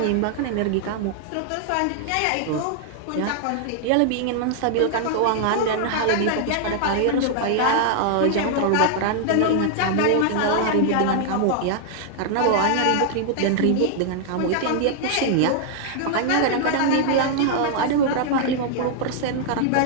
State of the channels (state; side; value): different; both; correlation -0.01